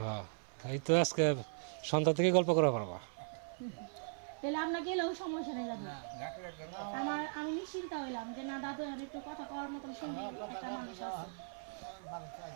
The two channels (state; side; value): silent; left; 52 dB below the other